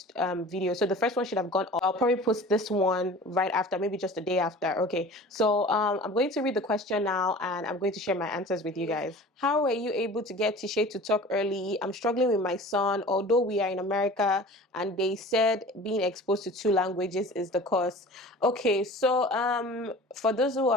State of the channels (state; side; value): normal; both; correlation 0.41